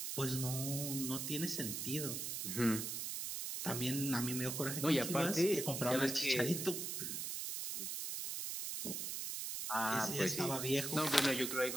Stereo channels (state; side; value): noise; right; hiss, 3 dB below the sound